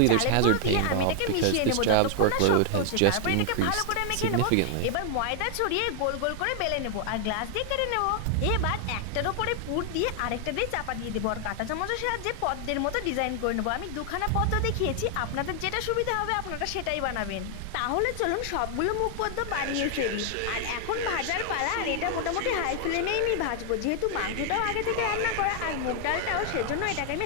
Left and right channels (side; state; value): both; different; correlation 0.00